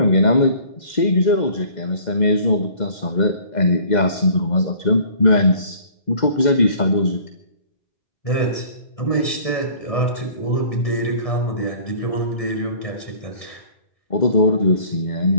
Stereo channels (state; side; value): late; right; 2.1 ms